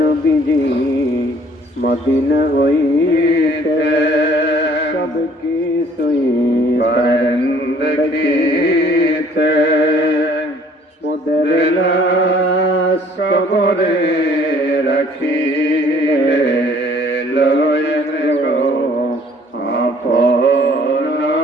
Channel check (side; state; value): both; normal; correlation 0.57